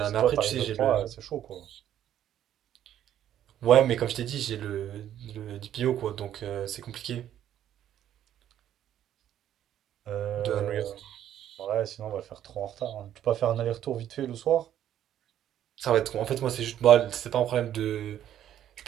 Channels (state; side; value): quieter; left; 11.1 dB